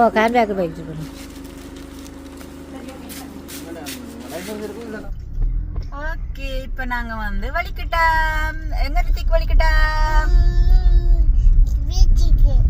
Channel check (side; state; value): both; identical; correlation 1.00